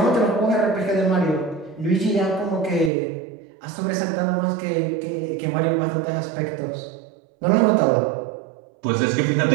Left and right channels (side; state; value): left; drops out; at 2.9 s